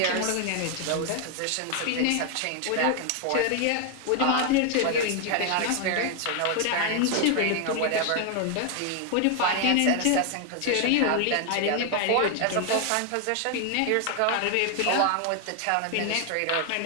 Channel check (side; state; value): both; different; correlation 0.00